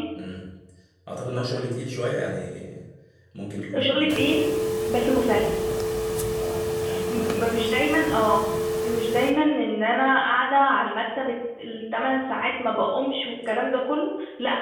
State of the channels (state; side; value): identical; both; correlation 1.00